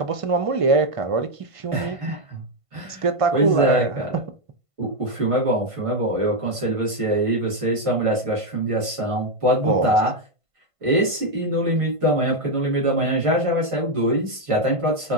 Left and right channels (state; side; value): late; left; 1.5 ms